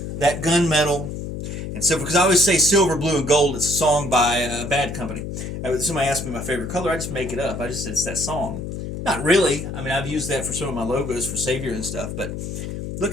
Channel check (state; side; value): noise; left; hum, 6 dB below the sound